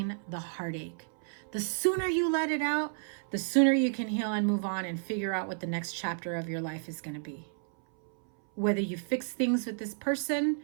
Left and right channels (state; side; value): silent; left; 57 dB below the other